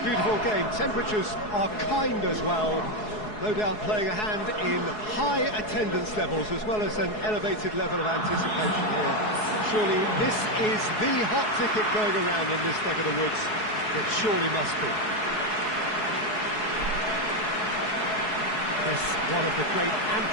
game. Temperatures are kind as well. No doubt playing a hand in high attendance levels as well as an elevated level of anticipation here. Surely this is the hot ticket going around in this neck of the woods. It surely must be. This one of the great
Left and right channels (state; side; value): late; right; 4.7 ms